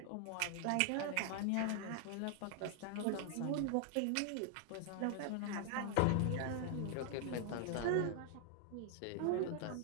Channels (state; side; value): different; both; correlation 0.00